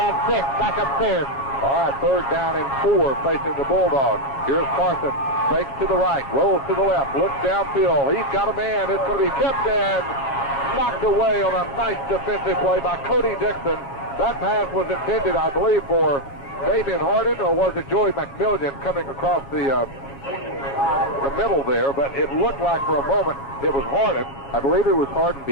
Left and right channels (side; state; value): right; late; 7.2 ms